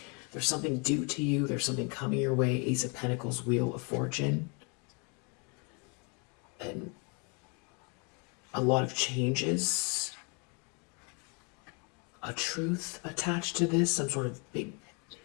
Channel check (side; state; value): right; quieter; 33.8 dB